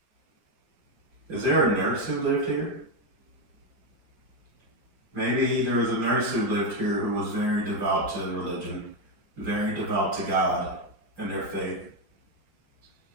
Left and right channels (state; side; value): late; left; 4.7 ms